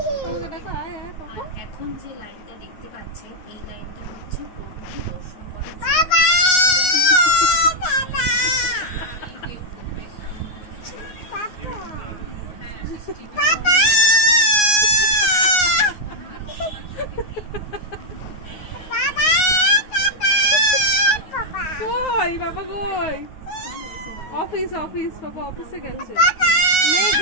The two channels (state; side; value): late; right; 9.6 ms